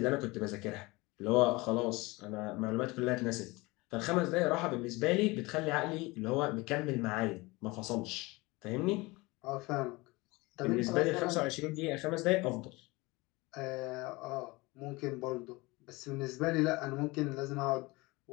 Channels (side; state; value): right; quieter; 23.1 dB